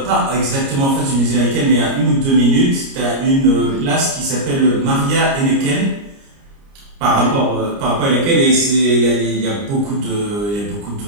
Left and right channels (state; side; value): late; left; 29 ms